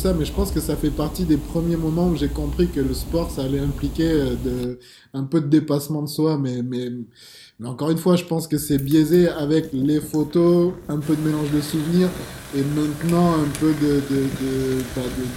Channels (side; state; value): both; identical; correlation 1.00